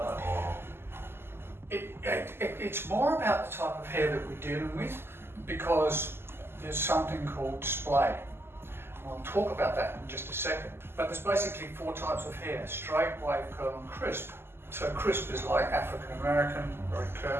or? It's more about the type of hair that we're dealing with, because there's something called splay. I'll talk about that in just a second. But there's basically 4 types of hair: straight, wave, curl and crisp. So crisp is like African American, very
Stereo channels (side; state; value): left; late; 0.12 ms